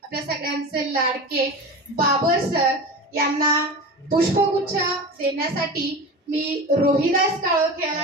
आपल्या सगळ्यांचे लाडके बाबर सर यांना पुष्पगुच्छ देण्यासाठी मी रोहिदास काळोखे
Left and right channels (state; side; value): normal; both; correlation 0.30